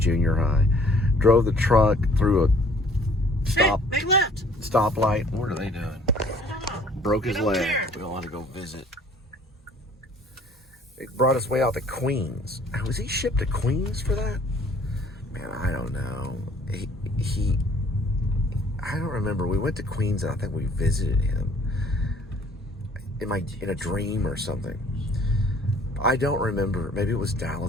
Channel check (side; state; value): both; normal; correlation 0.56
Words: high. Drove the truck through a Big left. stoplight. What are they doing? I don't know. Broke his leg. Care. We don't want to go visit. It brought us way out to Queens. Was he shipped to Queens for that? Man, I don't know. I don't remember. We went to Queens and I think we visited him in a dream or something. I don't remember. Maybe it was